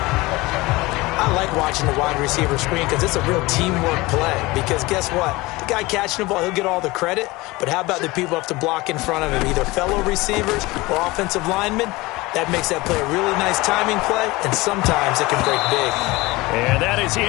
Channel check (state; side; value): quieter; right; 21.5 dB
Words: I like watching the wide receiver screen because it's a real teamwork play. Because guess what? The guy catching the ball, he'll get all the credit. But how about the people have to block in front of him, either fellow receivers or offensive linemen? That makes that play a really nice timing play, and sometimes it can break big. And that is